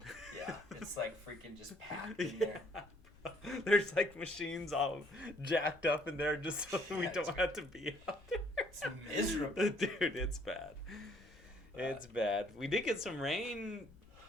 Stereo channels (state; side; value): noise; left; rumble, 24 dB below the sound